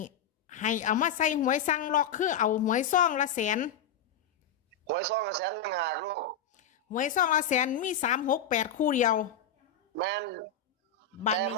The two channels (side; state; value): right; quieter; 6.3 dB